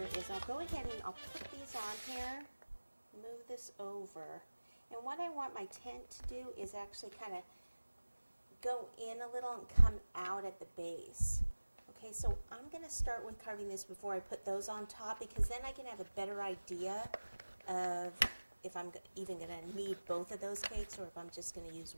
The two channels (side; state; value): both; inverted; correlation -1.00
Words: is I'll go ahead and I'll put these on here, move this over. And what I want my tent to do is actually kind of go in a little and come out at the base. Okay, so I'm going to start with carving this before I put those on top, because then I can have a better idea of if I'm even going to need both of those cakes or if I'm just going to use